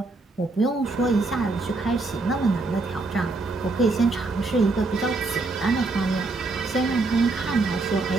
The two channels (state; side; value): quieter; left; 3.4 dB